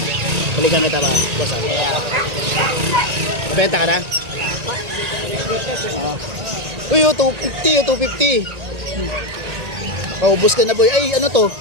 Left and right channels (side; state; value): left; late; 1.9 ms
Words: Balikan kita ba? Boss benta ka na? Uy, 250, 250. Paubos ka na boy. Ay, ano to?